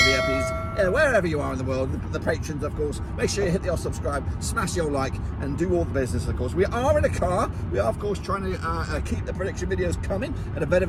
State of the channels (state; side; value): identical; both; correlation 1.00